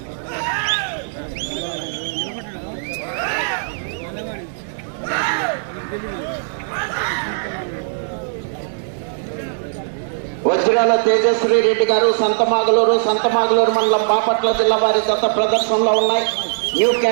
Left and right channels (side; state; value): left; silent; digital silence